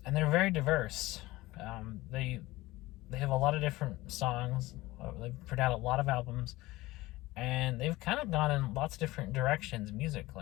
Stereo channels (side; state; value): right; quieter; 19.0 dB